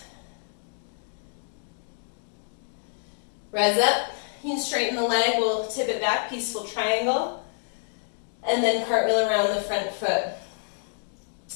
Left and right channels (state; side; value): silent; right; digital silence